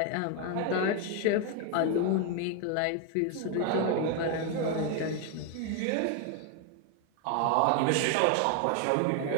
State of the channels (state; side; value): different; both; correlation 0.01